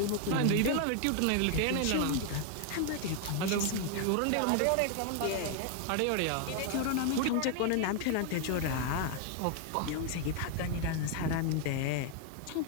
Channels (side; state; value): both; different; correlation 0.00